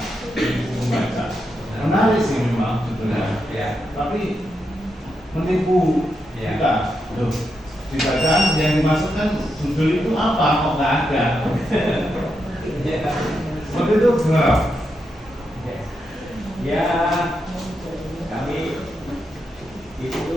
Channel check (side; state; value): both; normal; correlation 0.84